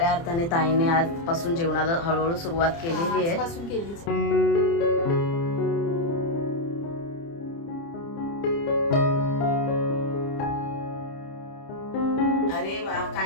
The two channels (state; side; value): late; right; 30 ms